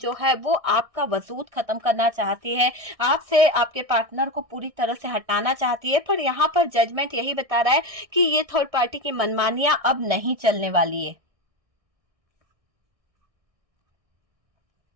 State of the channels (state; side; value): late; left; 1.6 ms